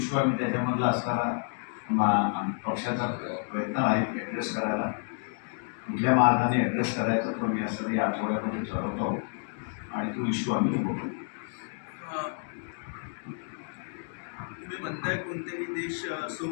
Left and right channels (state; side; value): silent; right; 58 dB below the other